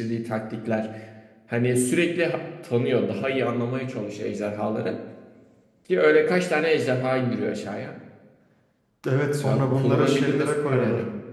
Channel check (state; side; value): identical; both; correlation 1.00